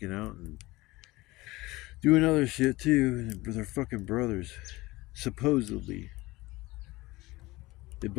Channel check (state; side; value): quieter; right; 20.2 dB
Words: out and doing other shit too. They're fucking brothers. Supposedly. They